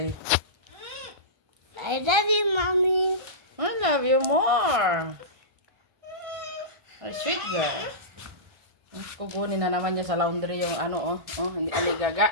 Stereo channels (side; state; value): left; late; 1.6 ms